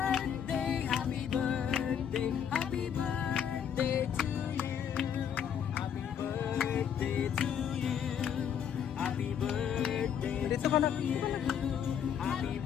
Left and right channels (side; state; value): right; quieter; 8.4 dB